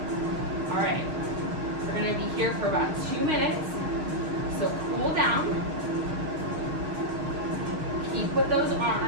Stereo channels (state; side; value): late; left; 6.4 ms